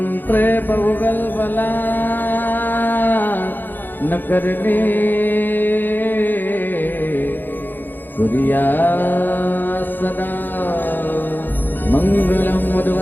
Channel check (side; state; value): right; late; 0.091 ms